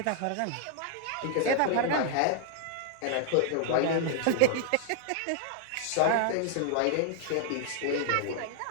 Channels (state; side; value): different; both; correlation -0.01